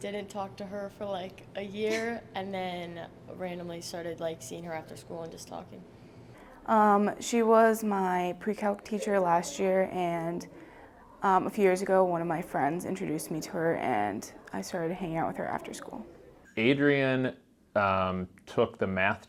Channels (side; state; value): both; identical; correlation 1.00